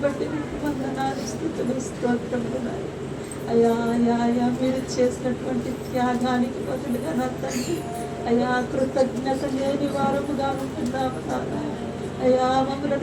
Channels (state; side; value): identical; both; correlation 1.00